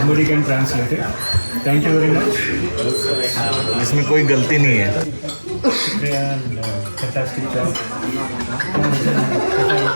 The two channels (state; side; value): inverted; both; correlation -1.00